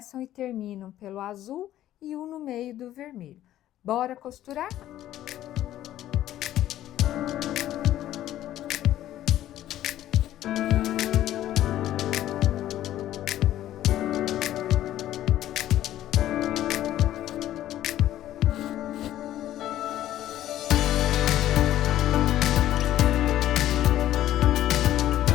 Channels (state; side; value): quieter; right; 13.0 dB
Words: e terminam pelo azul e um no meio do vermelho. Bora costurar?